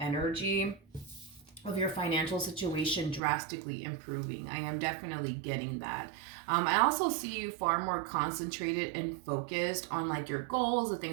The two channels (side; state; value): left; drops out; at 3.2 s